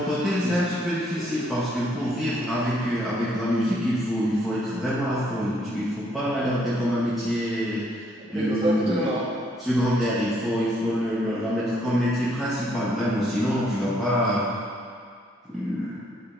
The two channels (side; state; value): both; normal; correlation 0.69